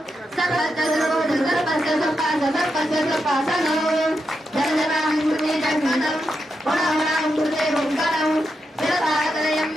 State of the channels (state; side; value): normal; both; correlation 0.85